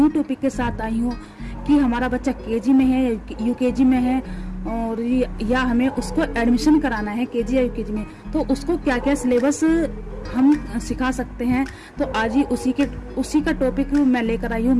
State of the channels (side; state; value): both; identical; correlation 1.00